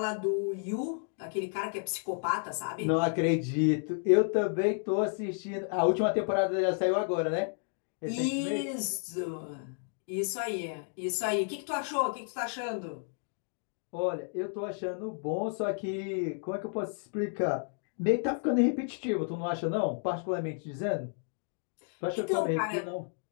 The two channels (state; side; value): silent; right; 57 dB below the other